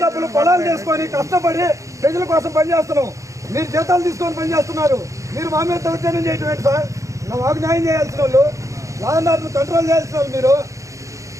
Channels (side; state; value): left; late; 0.15 ms